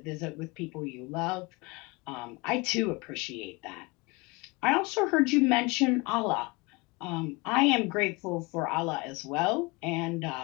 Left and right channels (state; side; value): quieter; right; 25.8 dB